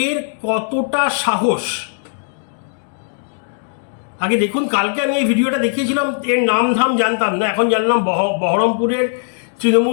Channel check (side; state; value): right; silent; digital silence